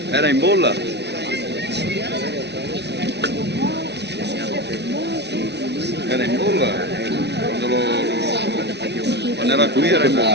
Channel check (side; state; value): left; late; 0.50 ms